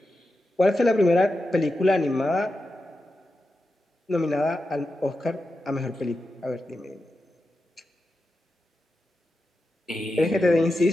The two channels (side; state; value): both; normal; correlation 0.90